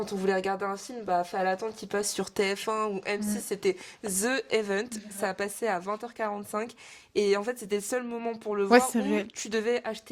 on voulait regarder un film, fallait attendre qu'il passe sur TF1 ou M6, c'était The Event. Ça a passé à 20h45. Et en fait, c'était le seul moment pour le voir où tu devais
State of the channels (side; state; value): both; identical; correlation 1.00